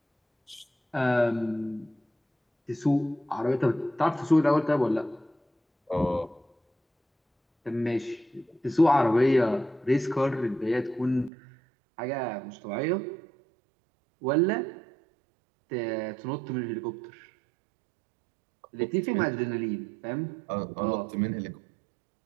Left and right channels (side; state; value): left; drops out; at 11.3 s